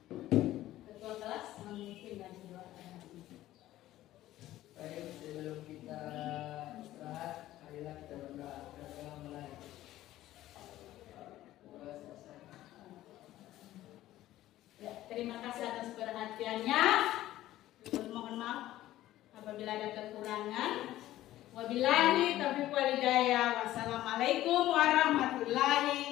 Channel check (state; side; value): quieter; right; 14.6 dB